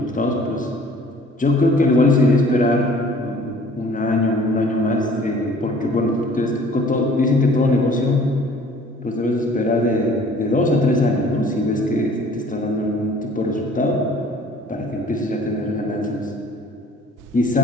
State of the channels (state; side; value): normal; both; correlation 0.52